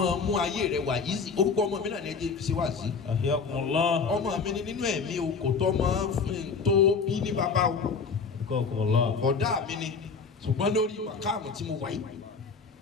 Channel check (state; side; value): quieter; right; 5.2 dB